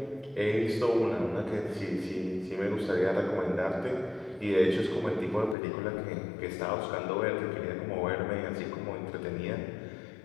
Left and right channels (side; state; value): right; drops out; at 5.6 s